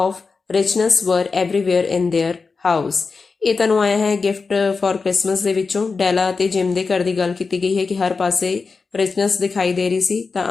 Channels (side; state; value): right; quieter; 4.5 dB